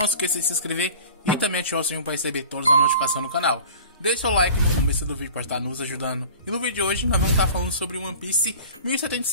esqueça de se inscrever e também ativar o sininho para receber todas as notificações no canal. Deixe seu like no começo do vídeo para estar nos ajudando. E no vídeo de hoje nós vamos estar falando sobre One Piece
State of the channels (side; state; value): both; inverted; correlation -0.42